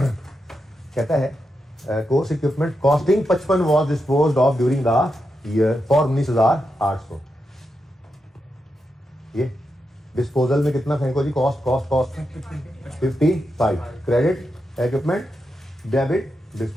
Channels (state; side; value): normal; both; correlation 0.86